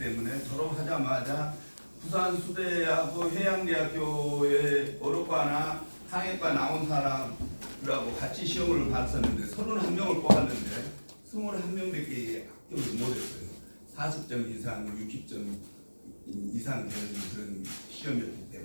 졸업하자마자 부산수대하고 해양대학교의 어록과나 항해과 나온 사람들하고 같이 시험을 봤었는데 31명을 뽑았는데 21명밖에 합격을 못했어요. 40점 이상, 60점 이상 되는 그런 시험이었기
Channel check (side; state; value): both; inverted; correlation -1.00